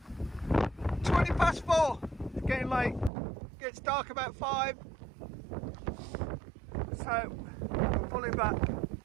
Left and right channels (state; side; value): drops out; left; at 3.1 s